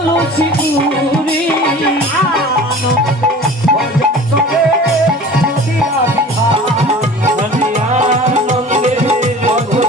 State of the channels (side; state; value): both; normal; correlation 0.41